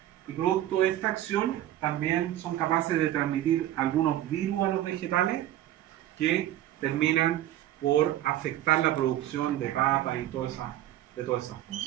y producto de esta acción también son capaces de transmitir algunos virus a los vegetales que terminan por afectar la producción de papas y de todas esas cosas.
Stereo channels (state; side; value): quieter; left; 13.1 dB